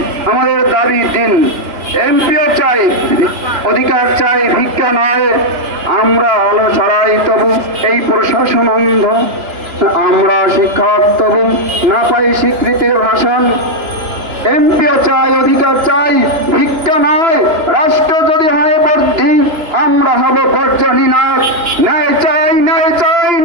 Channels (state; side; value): late; left; 2.9 ms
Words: আমাদের দাবি 3। এমপিও চাই, অধিকার চাই ভিক্ষা নয়। আমরা আলো ছড়াই তবু এই প্রশাসন অন্ধ, আমরা শিক্ষক তবু না পাই স্বীকৃতির ভাষণ। এমপিও চাই, অধিকার চাই ভিক্ষা নয়। রাষ্ট্র যদি হয় বর্ধি, আমরা হব বর্জনী নায়ক। ন্যায় চাই, ন্যায় চাই,